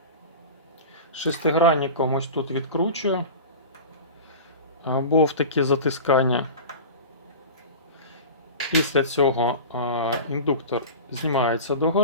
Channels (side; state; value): both; inverted; correlation -0.31